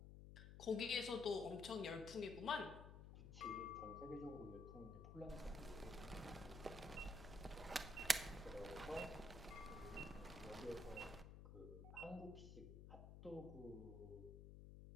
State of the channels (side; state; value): left; noise; hum, 10 dB below the sound